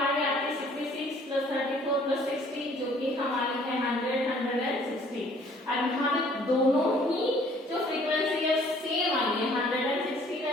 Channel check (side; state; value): both; normal; correlation 0.57